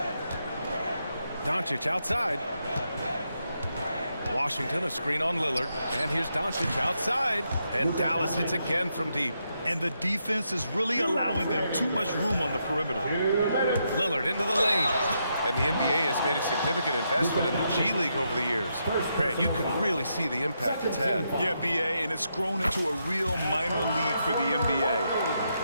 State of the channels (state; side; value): inverted; both; correlation -0.81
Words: Doncic outside. Washington, a screen on Lillard. And here's Doncic outside. And Dallas hits again from deep. and the defense is really allowing them too much room on the perimeter. Lillard into the lane. And the NBA has made a significant investment in the G League over the years. Grant, you can really see the impact it's had. Yeah, BA, and it's grown into a real minor league for the NBA.